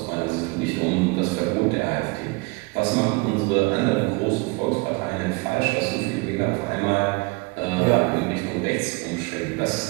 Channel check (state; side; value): quieter; left; 27.7 dB